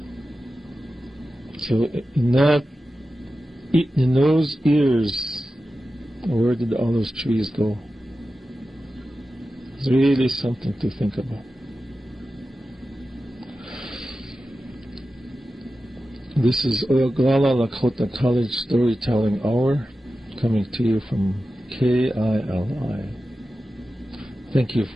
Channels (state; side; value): normal; both; correlation 0.93